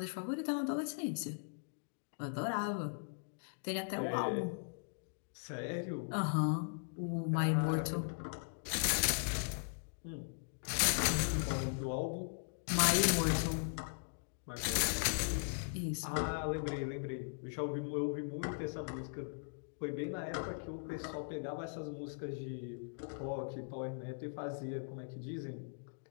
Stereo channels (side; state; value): right; silent; digital silence